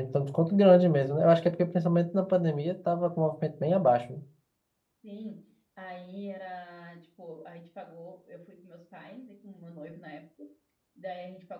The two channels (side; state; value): both; identical; correlation 1.00